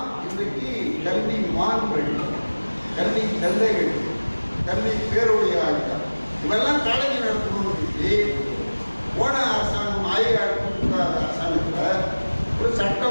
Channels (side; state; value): both; inverted; correlation -1.00